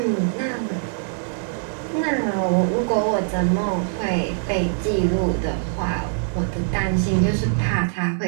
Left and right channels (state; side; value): silent; left; digital silence